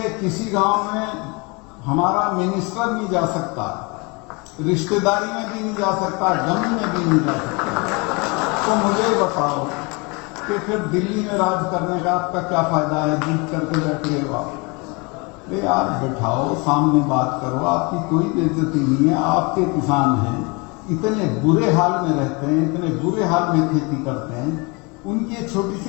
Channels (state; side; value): quieter; right; 28.9 dB